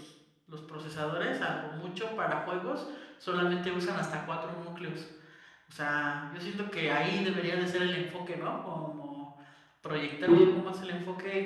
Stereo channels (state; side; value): identical; both; correlation 1.00